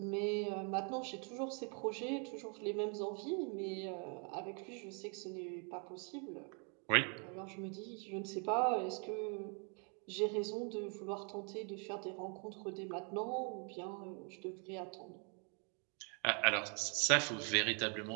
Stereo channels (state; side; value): quieter; left; 38.7 dB